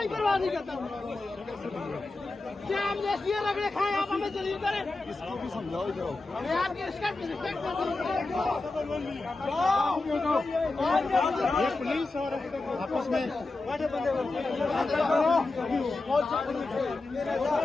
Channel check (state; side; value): quieter; right; 3.3 dB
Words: परवाह नहीं करता। क्या हमने ये रगड़े खाए, आप हमें जलील करें? इसको भी समझाओ इधर। मैं आपकी रिस्पेक्ट करता हूँ। ये पुलिस और आपस में बड़े बंदे